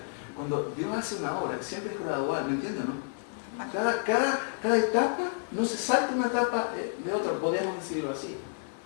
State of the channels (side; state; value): right; silent; digital silence